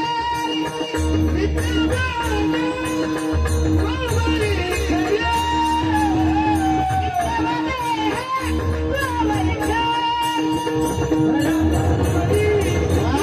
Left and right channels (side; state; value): both; identical; correlation 1.00